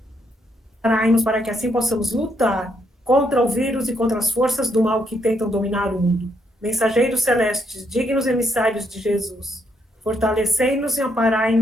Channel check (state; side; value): normal; both; correlation 0.75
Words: para que assim possamos lutar contra o vírus e contra as forças do mal que tentam dominar o mundo. Mensageiros celestes, dignos emissários de Jesus, fortalecei-nos e